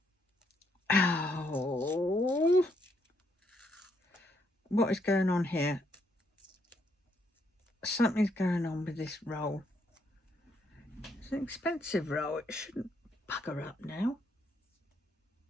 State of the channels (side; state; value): both; normal; correlation 0.74